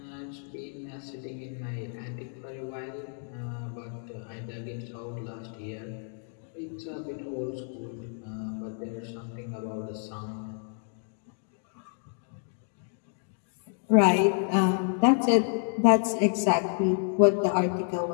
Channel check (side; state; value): right; silent; 57 dB below the other